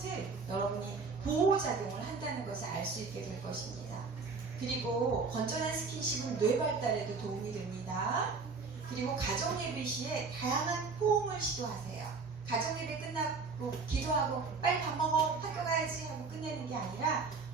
여러분이 보호작용을 한다는 것을 알 수 있게 될 것입니다. 그리고 건전한 스킨십은 뇌 발달에도 도움이 됩니다. 그리고 가정예배 시에 다양한 포옹을 시도하세요. 가정예배 끝나고 기도하고 빨리 밥 먹어 학교 가야지 하고 끝내는 게 아니라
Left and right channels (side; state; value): left; quieter; 4.6 dB